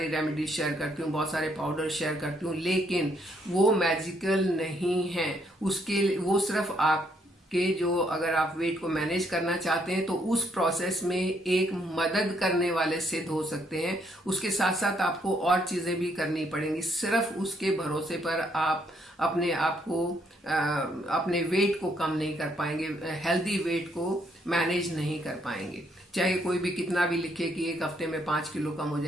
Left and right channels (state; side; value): normal; both; correlation 0.72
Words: रेमेडीज शेयर करती हूँ, बहुत सारे पाउडर शेयर करती हूँ, लेकिन वो मैजिकल नहीं है। उसके वो सिर्फ आपके जो, अगर आप वेट को मैनेज करना चाहते हैं तो उस प्रोसेस में एक मदद करने वाले सिद्ध हो सकते हैं। उसके साथ साथ आपको और चीजें भी करनी पड़ेंगी। सिर्फ उसके भरोसे पर आप अपने आप को, अपने वेट को कम नहीं कर पाएंगे, हेल्दी वेट को मैनेज नहीं कर पाएंगे। चाहे कोई भी कितना भी लिखे कि 1 हफ्ते में 5 किलो कम हो